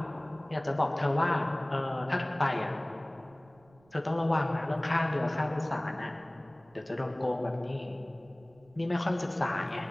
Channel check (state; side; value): noise; right; rumble, 30 dB below the sound